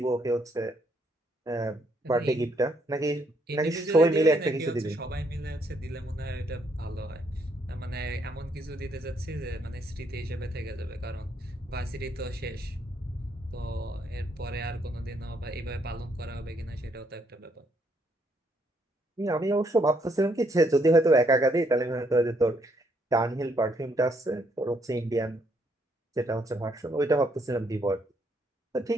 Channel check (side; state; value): both; normal; correlation 0.72